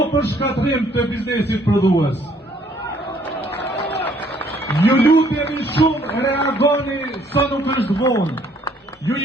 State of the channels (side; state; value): both; normal; correlation 0.63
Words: për shkatrim të biznesit prodhues. Ju lutemi shumë, reagoni sa nuk është vonë. Ju